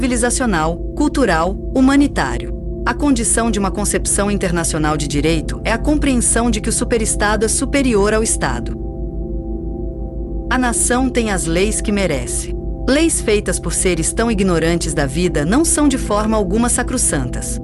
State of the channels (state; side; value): identical; both; correlation 1.00